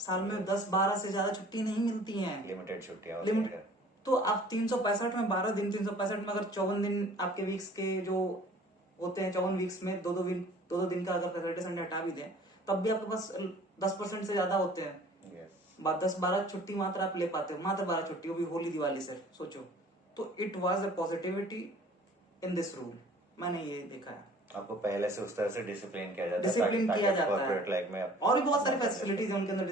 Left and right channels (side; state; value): both; normal; correlation 0.50